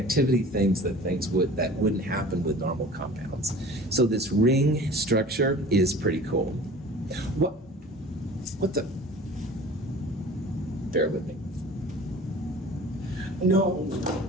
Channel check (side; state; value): both; normal; correlation 0.43